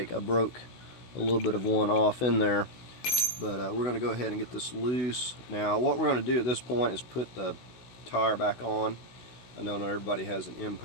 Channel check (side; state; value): right; late; 16 ms